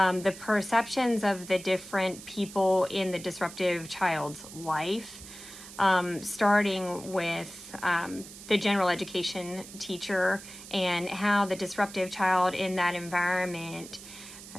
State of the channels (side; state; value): right; noise; hiss, 15 dB below the sound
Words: perceptions of the different people in the disruptive child's life, starting with the general education teacher and how the disruptive child in that environment